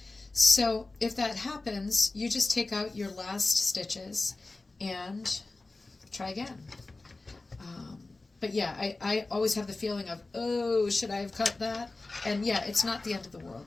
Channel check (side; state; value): right; quieter; 3.3 dB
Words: So if that happens, you just take out your last stitches and try again. But yeah, I always have the feeling of, oh, should I have cut that? And yeah, it's not the end of the